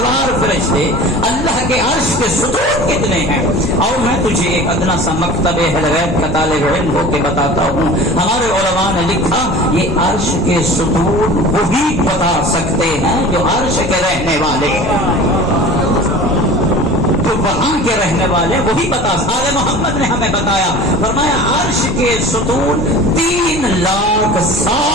فرشتے، اللہ کے عرش کے ستون کتنے ہیں؟ اور میں تجھے ایک ادنا سا مکتب اہل غیب کا طالب علم ہو کے بتاتا ہوں، ہمارے علماء نے لکھا یہ عرش کے ستون وہی بتا سکتے ہیں جو عرش کے رہنے والے ہیں، جو وہاں کے رہنے والے وہی بتا۔ سارے محمد نے ہمیں بتایا، فرمایا عرش کے ستون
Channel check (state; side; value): normal; both; correlation 0.39